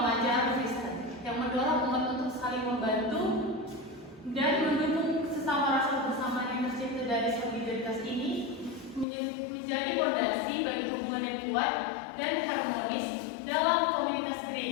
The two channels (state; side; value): drops out; right; at 9.1 s